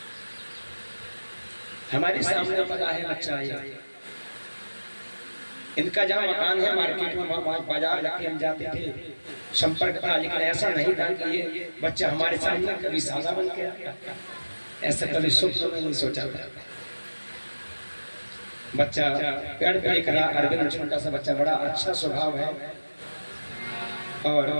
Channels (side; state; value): both; inverted; correlation -1.00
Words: हमारे सामने पता है बच्चा है। इनका जहाँ मकान है मार्केट में, बाजार लगे हम जाते थे, संपर्क था, लेकिन ऐसा नहीं था कि ये बच्चा हमारे सामने कभी सादा बन गया। ऐसा कभी स्वप्न में नहीं सोचा था। बच्चा पेड़ पे खड़ा, अरविंद छोटा सा बच्चा, बड़ा अच्छा स्वभाव है और